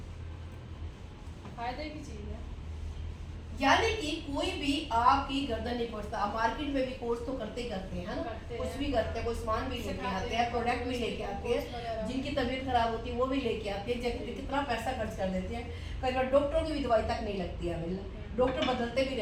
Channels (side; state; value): both; identical; correlation 1.00